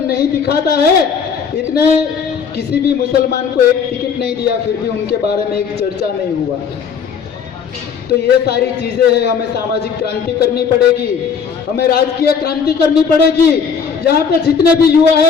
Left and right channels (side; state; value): right; quieter; 6.5 dB